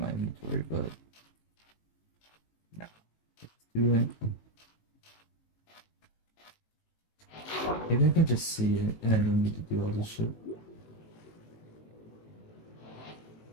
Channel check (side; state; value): right; late; 18 ms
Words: inventory, but no. Do it. Maybe I can just see it and I don't need to do all this shit.